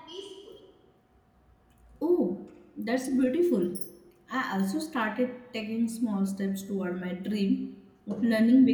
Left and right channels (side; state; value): both; identical; correlation 1.00